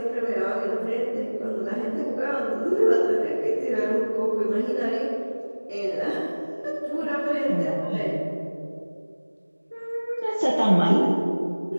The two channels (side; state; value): both; inverted; correlation -1.00